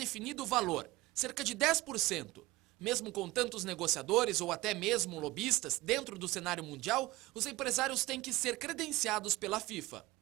o valor, cerca de 10%. Mesmo com tantos negociadores ou até mesmo lobistas dentro do cenário mundial, os empresários têm que ser credenciados pela FIFA.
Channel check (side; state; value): left; quieter; 19.6 dB